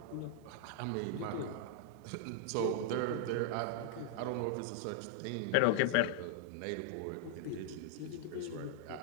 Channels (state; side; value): different; both; correlation 0.00